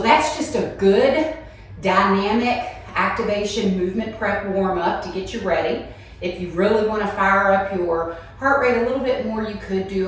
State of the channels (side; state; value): both; identical; correlation 1.00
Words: just a good dynamic activation movement prep warm up to get you ready. If you really want to fire up your heart rate a little bit more, you could do